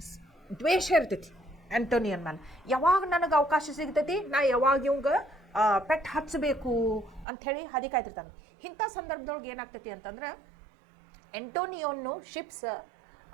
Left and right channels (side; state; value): left; drops out; at 7.2 s